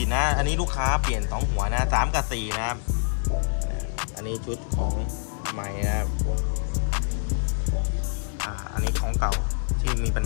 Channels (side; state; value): right; silent; 61 dB below the other